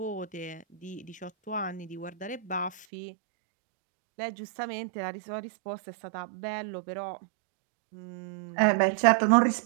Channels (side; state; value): left; drops out; at 2.9 s